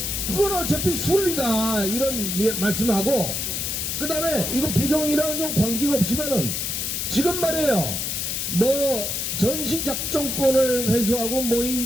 그건 어차피 순리다 이런 말씀하고, 그 다음에 이거 부정이랑은 좀 관계가 없지만은 지금 말이에요, 뭐 전시작전권을 회수하고 뭐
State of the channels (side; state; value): left; noise; hiss, 2 dB below the sound